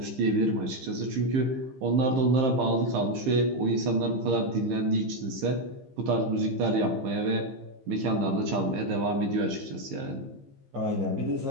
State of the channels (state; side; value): late; left; 15 ms